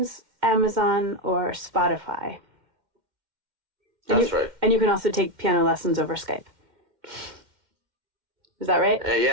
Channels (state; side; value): late; left; 2.1 ms